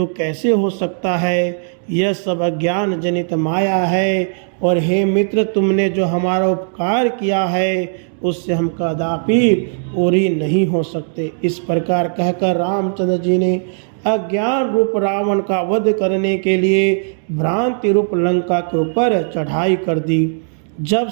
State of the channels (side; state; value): left; silent; digital silence